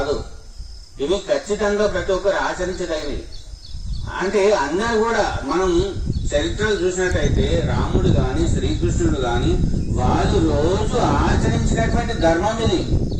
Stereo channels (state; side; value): identical; both; correlation 1.00